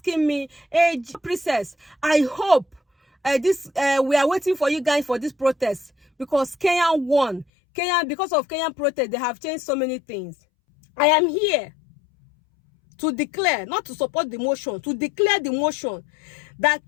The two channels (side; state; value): right; drops out; at 7.5 s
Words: me, hey, Princess, I hope we are waiting for you guys for this protest because Kenya won. Because of Kenyan protest, they have changed so many things. I am here to declare, not to support the motion, to declare the motion that